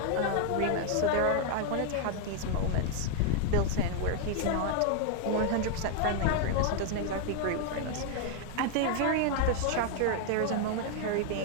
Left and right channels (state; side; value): different; both; correlation 0.00